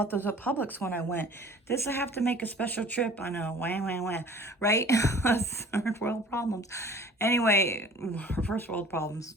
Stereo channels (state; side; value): normal; both; correlation 0.47